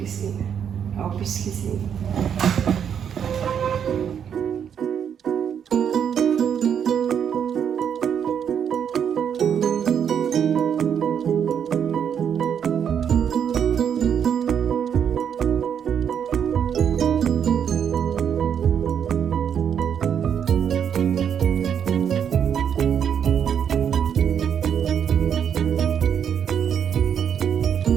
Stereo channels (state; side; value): quieter; left; 8.2 dB